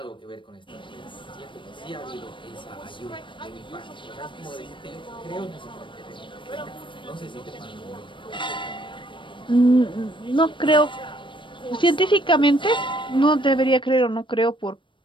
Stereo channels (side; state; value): right; late; 0.24 ms